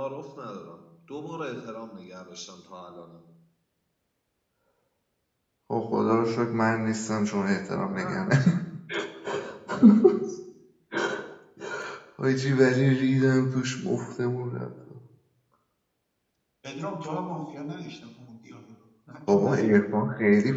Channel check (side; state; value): both; identical; correlation 1.00